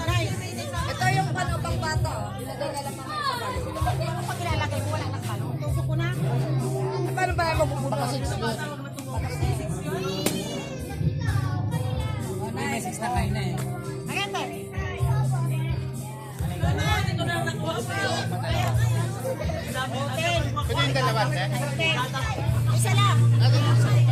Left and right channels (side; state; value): both; identical; correlation 1.00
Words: Ito yung pang bata. Ilagay na lang naman sa balo. Pag ilalagay mo, wala nang balo. Tusok ko na. Paano ba yung mapupunta sa 6 doon? May 6 na kayo na eh. Ayan ba? Pwede yung dalawa, eh? Isa lang.